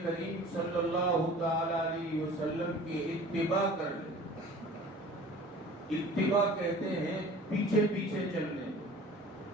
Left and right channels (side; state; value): both; normal; correlation 0.44